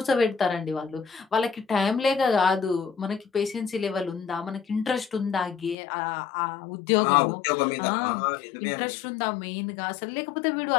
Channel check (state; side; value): drops out; right; at 5.8 s